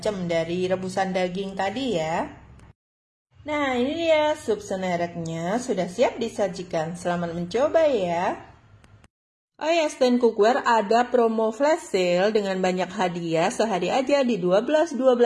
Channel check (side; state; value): both; identical; correlation 1.00